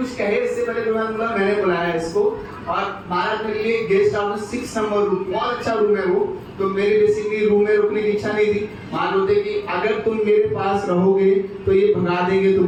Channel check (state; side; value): identical; both; correlation 1.00